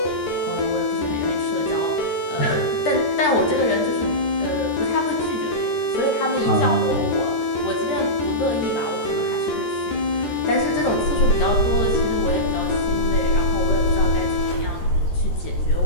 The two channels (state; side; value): late; right; 13 ms